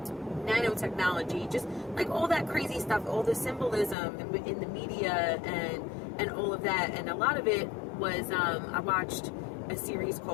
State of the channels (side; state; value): right; drops out; at 4.0 s